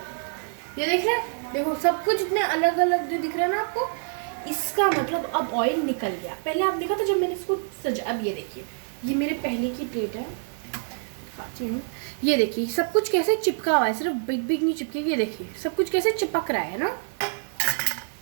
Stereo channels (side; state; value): left; silent; 57 dB below the other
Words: ये देख रहे हैं, देखो सब कुछ इतने अलग अलग दिख रहा है ना आपको। इसका मतलब अब ऑयल निकल गया। पहले आप देखा था जब मैंने इसको सजा, अब ये देखिए, ये मेरे पहले की प्लेट है, खाती हूँ। ये देखिए सब कुछ कैसे चिपका हुआ है, सिर्फ बिग बिग नहीं चिपके, ये देखिए सब कुछ कैसे चिपक रहा है ना,